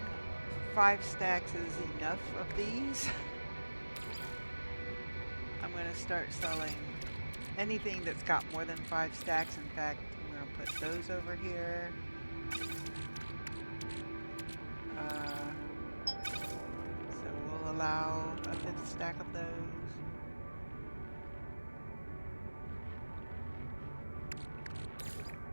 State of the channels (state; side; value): inverted; both; correlation -1.00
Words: 5 stacks is enough of these. I'm gonna start selling anything that's got more than 5 stacks. In fact, I'm gonna put those over here. So we'll allow a 5th stack of those.